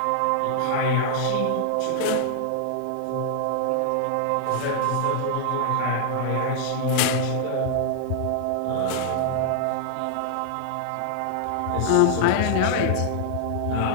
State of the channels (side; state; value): both; different; correlation -0.01